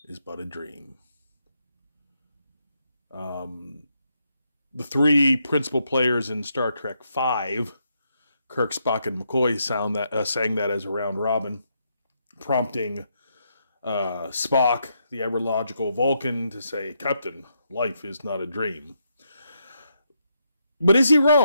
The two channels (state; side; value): inverted; both; correlation -0.79